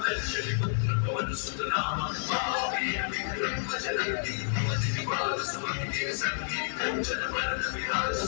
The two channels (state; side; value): silent; right; digital silence